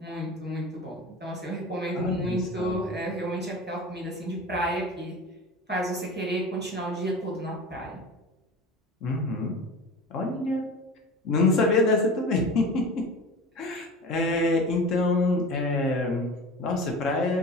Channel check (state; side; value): normal; both; correlation 0.34